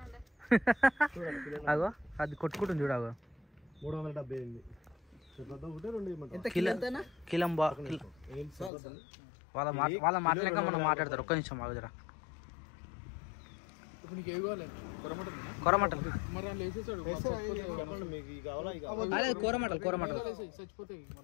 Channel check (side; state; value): right; drops out; at 8.7 s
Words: అగో అది కొట్టుకుంటుంది చూడగో. 378. కిలం వాళ్ళ మాటలేక మనం మాట్లాడతారు. ఒక్క నిమిషం ఆగుదరా. ఇప్పుడు నీకు ఏవి కావాలి? కూరమటలు మరి వాళ్ళు వేసేసాడు అదే కూరమటలు చచ్చిపోతాయి.